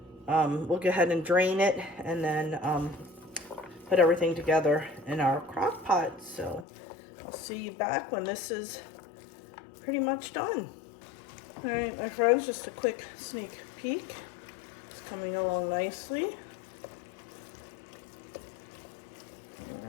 We'll go ahead and drain it, and then put everything together in our crock pot. So I'll see you back when this is pretty much done. All right, my friends, just a quick sneak peek. It's coming along nicely.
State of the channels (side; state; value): right; drops out; at 6.7 s